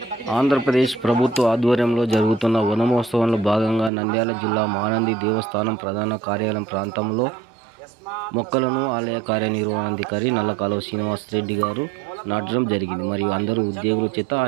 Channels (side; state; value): left; drops out; at 3.9 s